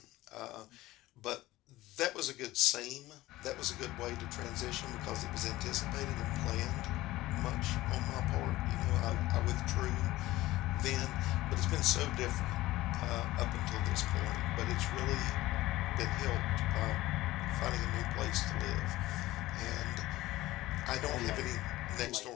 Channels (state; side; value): quieter; right; 17.3 dB